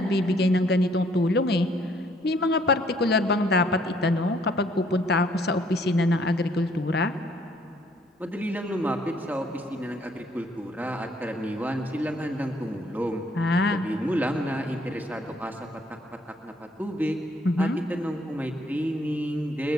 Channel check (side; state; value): both; normal; correlation 0.64